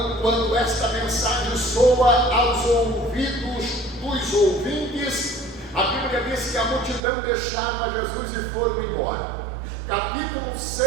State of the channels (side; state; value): left; drops out; at 7.0 s